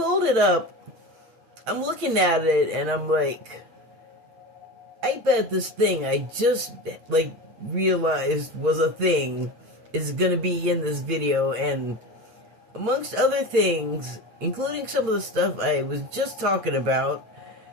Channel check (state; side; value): late; left; 9.0 ms